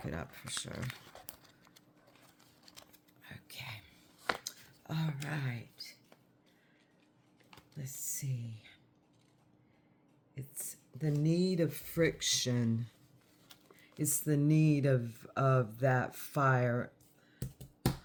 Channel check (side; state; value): both; identical; correlation 1.00